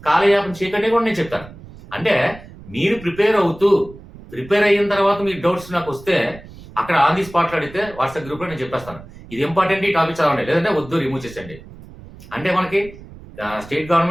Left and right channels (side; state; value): right; noise; rumble, 18 dB below the sound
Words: కాలయాపన చేయకండి కూడా నేను చెప్తాను. అంటే మీరు ప్రిపేర్ అయిన తర్వాత మీ డౌట్స్ నాకు వస్తే అక్కడ ఆన్ ది స్పాట్ లో అడిగితే వాట్సాప్ గ్రూప్ లో నేను చెప్పేస్తాను. ఇది ఇంపార్టెంట్, ఈ టాపిక్ చదవండి, లేదంటే వద్దు రిమూవ్ చేసేయండి. అంటే మనకి స్టేట్